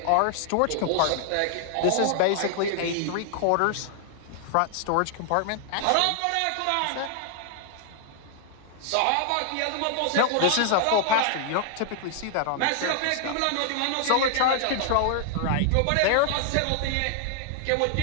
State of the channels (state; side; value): different; both; correlation 0.00